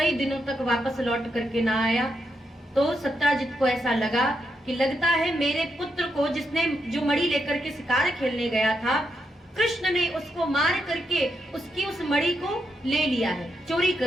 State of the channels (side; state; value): both; normal; correlation 0.82